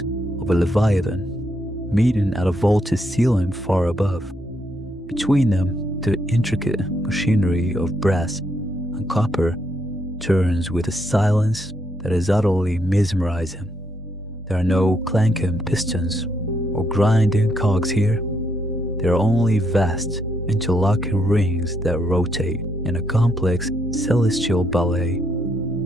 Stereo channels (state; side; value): normal; both; correlation 0.75